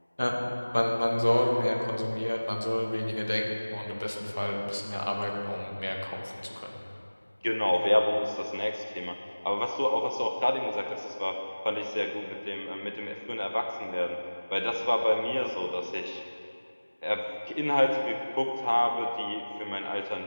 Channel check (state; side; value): inverted; both; correlation -1.00